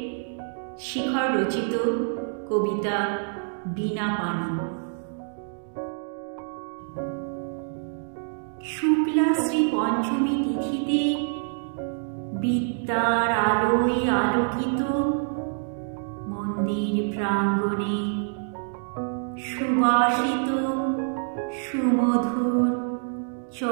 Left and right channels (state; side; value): silent; left; digital silence